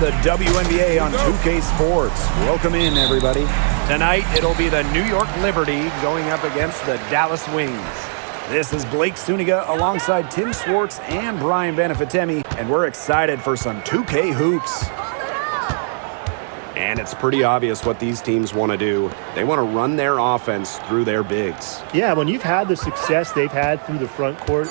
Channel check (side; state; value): left; silent; 58 dB below the other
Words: the WNBA on 2K Sports. Welcome in, everybody. Tonight, it'll be the New York Liberty going up against the Dallas Wings. This is Blake Suniga alongside Tim Swartz and Brian Benefitemi, and we're excited for some 2K hoops. And it's pretty obvious what these teams want to do. They want to run their offense through their bigs. Yeah, when you've had the success they've had through the front court,